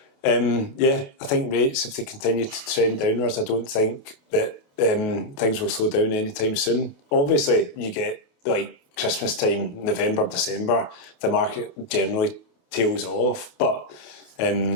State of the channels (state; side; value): late; right; 28 ms